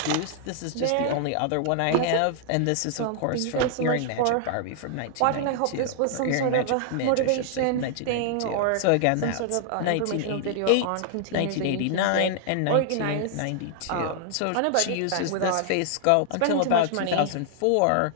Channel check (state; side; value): different; both; correlation -0.01